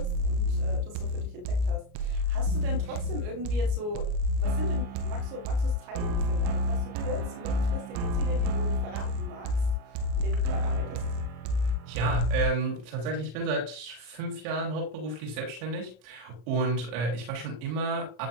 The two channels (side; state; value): left; late; 33 ms